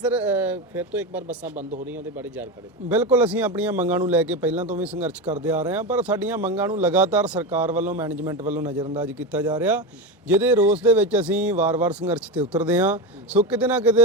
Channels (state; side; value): normal; both; correlation 0.18